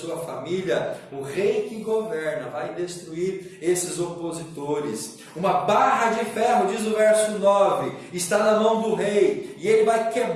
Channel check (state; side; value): identical; both; correlation 1.00